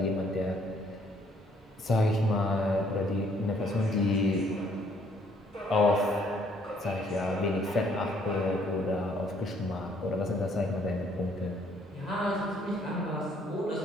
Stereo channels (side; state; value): both; normal; correlation 0.65